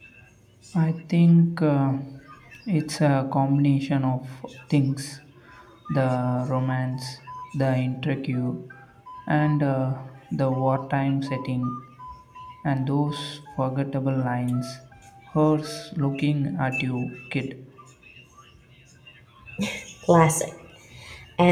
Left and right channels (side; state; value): both; identical; correlation 1.00